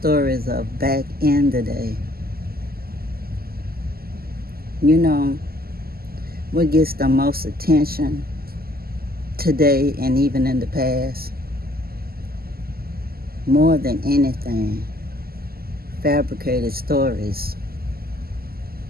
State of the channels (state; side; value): late; left; 0.44 ms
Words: of back in the day. You know, what gets the most attention today and even in the past? More than anything, fabricated stories.